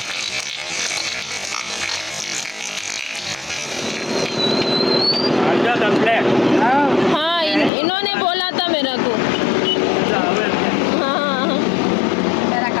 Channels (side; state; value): right; drops out; at 7.7 s